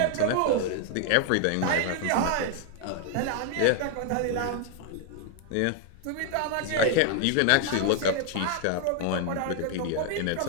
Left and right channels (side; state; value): both; different; correlation 0.00